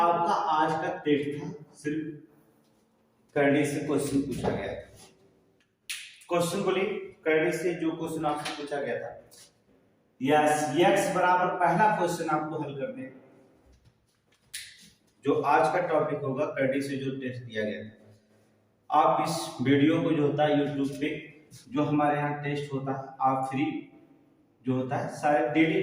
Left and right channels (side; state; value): both; identical; correlation 1.00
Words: आज का टेस्ट था, सिर्फ करने से क्वेश्चन पूछा गया था। क्वेश्चन बोलिए, करने से जो क्वेश्चन आपसे पूछा गया था, यस x बराबर पहला क्वेश्चन आपको हल करने हैं। जो आज का टॉपिक होगा करने से जो टेस्ट दिया गया था, आप इस वीडियो को जो होता है यूट्यूब पे जो हमारे यहाँ टेस्ट होता है, आप फ्री जो होता है सारे डेली